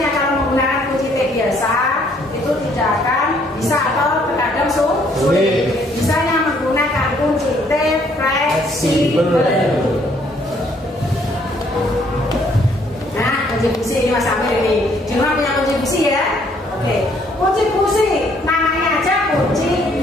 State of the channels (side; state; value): both; normal; correlation 0.65